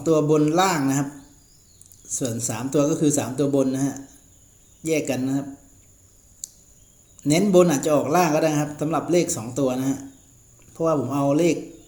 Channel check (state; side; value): identical; both; correlation 1.00